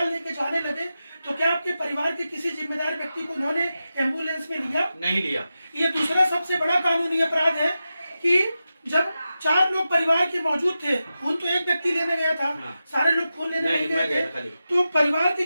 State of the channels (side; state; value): both; inverted; correlation -0.91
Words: लेके जाने लगे तो क्या आपके परिवार के किसी जिम्मेदार व्यक्ति को उन्होंने एम्बुलेंस में लिया? नहीं लिया। ये दूसरा सबसे बड़ा कानूनी अपराध है कि जब 4 लोग परिवार के मौजूद थे, खून तो एक व्यक्ति लेने गया था। सारे लोग खून लेने नहीं गए थे। तो परिवार के